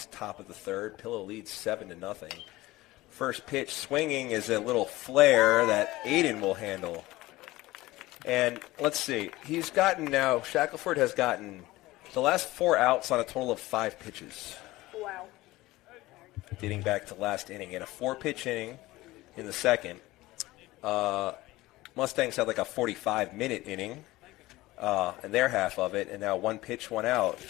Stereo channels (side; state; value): right; quieter; 18.5 dB